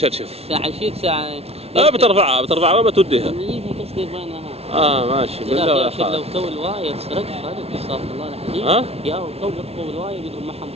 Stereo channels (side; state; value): left; late; 0.30 ms